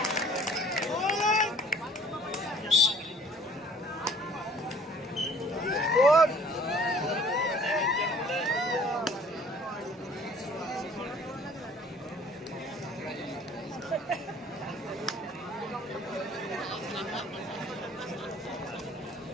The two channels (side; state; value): both; normal; correlation 0.53